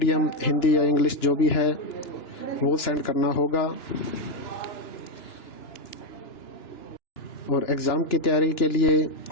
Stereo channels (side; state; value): right; late; 2.9 ms